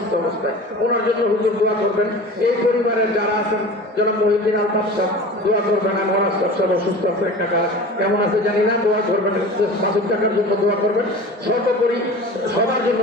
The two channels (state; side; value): normal; both; correlation 0.37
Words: অবস্থায়, ওনার জন্য হুজুর দোয়া করবেন। এই পরিবারের যারা আছেন জনাব মহিউদ্দিন আলতাফ সাহেব দোয়া করবেন। আমার আলতাফ সাহেব অসুস্থ আছে, একটা কাজ কেমন আছে জানি না, দোয়া করবেন। মাসুদ টাকার জন্য দোয়া করবেন, সর্বোপরি সবার জন্য